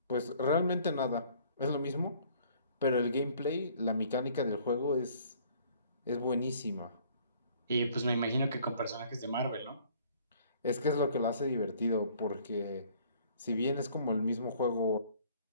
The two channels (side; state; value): both; inverted; correlation -0.57